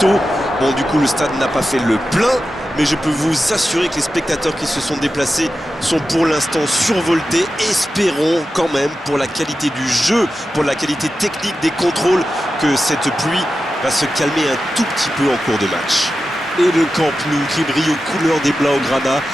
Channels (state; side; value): normal; both; correlation 0.92